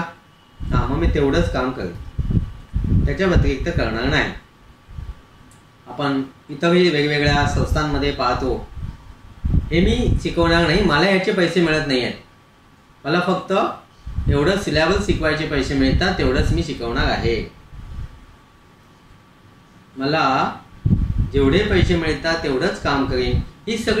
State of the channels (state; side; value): identical; both; correlation 1.00